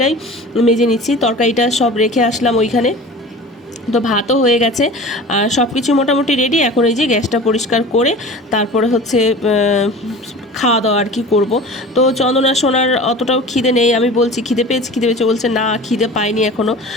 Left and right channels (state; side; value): normal; both; correlation 0.38